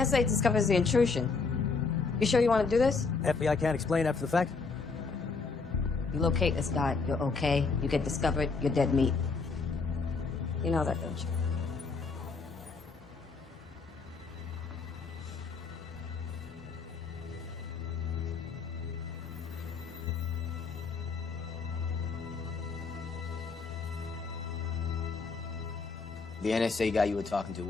discovers the intrusion, you sure you want to do this? FBI can't explain after the fact? You locate this guy, you're okay. You get discovered, you're dead meat. You know that, don't you? The NSA guy you were talking to,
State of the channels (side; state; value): right; quieter; 4.5 dB